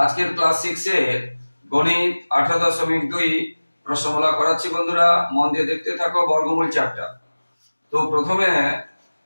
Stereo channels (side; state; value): both; inverted; correlation -1.00